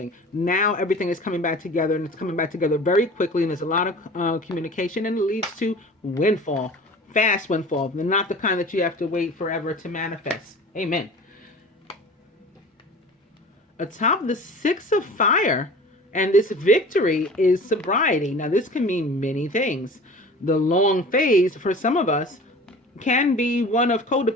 Now everything is coming back together, and it's coming back together very quickly, and there's a lot of communication, and it leads to windfall. Fast windfall. Not the kind that you have to wait forever to manifest. Amen. Atop the Six of Fire, and this victory is sobriety. Now, this can mean many things. The long phase for some of us can be one of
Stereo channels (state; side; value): normal; both; correlation 0.40